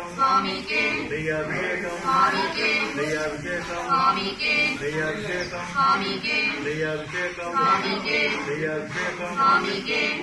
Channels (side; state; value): both; identical; correlation 1.00